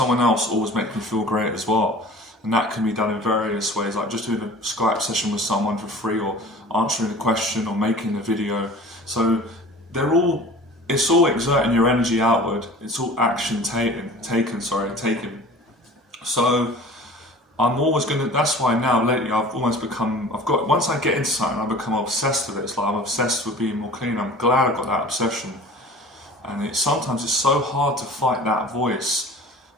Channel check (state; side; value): normal; both; correlation 0.43